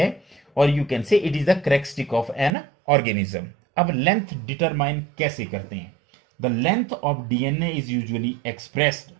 और you can say it is the characteristic of an organism. अब लेंथ डिटरमाइन कैसे करते हैं? The length of DNA is usually expressed,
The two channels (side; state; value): left; drops out; at 2.5 s